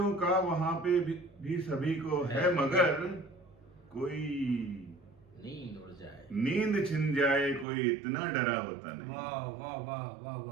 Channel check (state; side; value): drops out; left; at 7.7 s